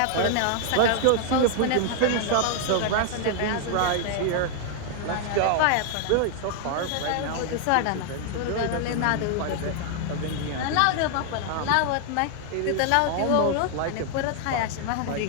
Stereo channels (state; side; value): different; both; correlation 0.00